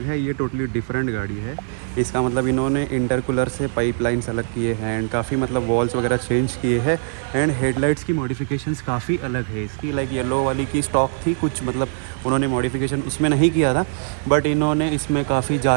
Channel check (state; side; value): silent; left; digital silence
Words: है, ये टोटली डिफरेंट गाड़ी है। इसका मतलब इन्होंने इंटरकूलर से पाइपलाइंस अलग किए हैं एंड काफ़ी मतलब वॉल्स वगैरह चेंज किए हैं एंड हेडलाइट्स की मॉडिफिकेशंस काफ़ी अलग है इसकी। लाइक येलो वाली की स्टॉक थी कुछ, मतलब उन्होंने मॉडिफिकेशन उसमें नहीं किया था, बट इन्होंने इसमें काफ़ी